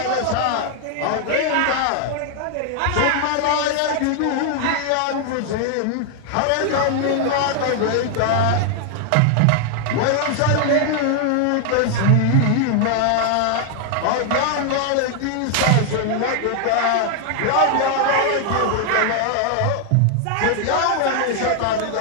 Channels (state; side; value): different; both; correlation 0.00